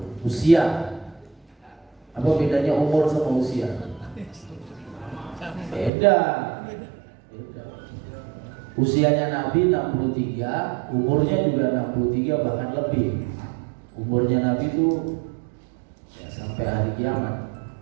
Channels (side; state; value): left; drops out; at 5.9 s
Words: usia. Apa bedanya umur sama usia? Beda. Usianya Nabi 63, umurnya juga 63 bahkan lebih. Umurnya Nabi itu ya sampai hari kiamat.